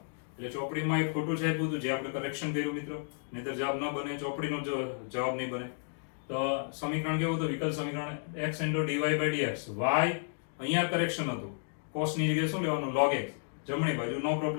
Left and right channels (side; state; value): right; silent; digital silence